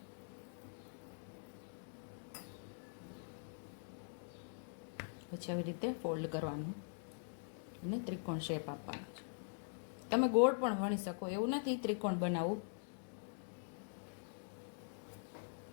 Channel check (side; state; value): right; silent; digital silence